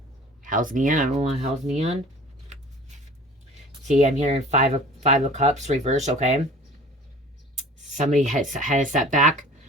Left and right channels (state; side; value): normal; both; correlation 0.45